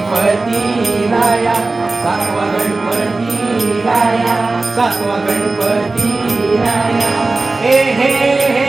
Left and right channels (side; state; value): left; quieter; 3.4 dB